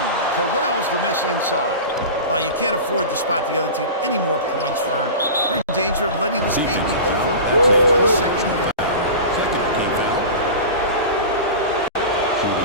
corrals the miss inside. You can't afford to spot the other team any more points, Vern. We're in danger of letting this game be over before the second half.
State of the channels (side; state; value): both; inverted; correlation -0.30